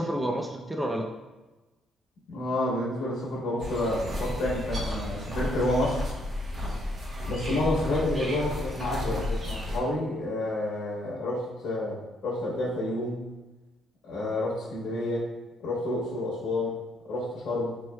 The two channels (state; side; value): normal; both; correlation 0.70